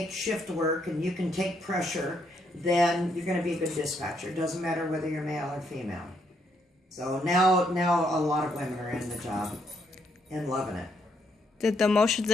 shift work, and you can take pressure, then you're going to be a good dispatcher. It doesn't matter whether you're male or female. So now a lot of women are in the job and loving it. Did the emotions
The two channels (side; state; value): both; normal; correlation 0.74